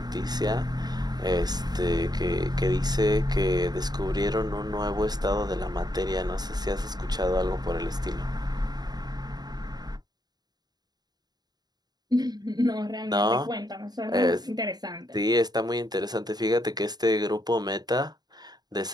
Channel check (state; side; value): late; left; 0.20 ms